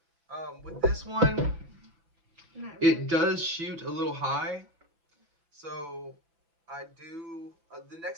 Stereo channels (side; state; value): left; late; 6.0 ms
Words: With this one, it does shoot a little high, so the